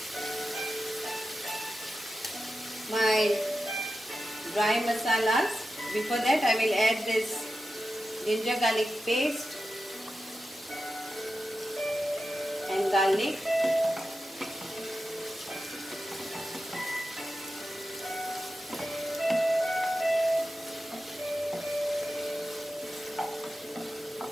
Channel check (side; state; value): both; normal; correlation 0.92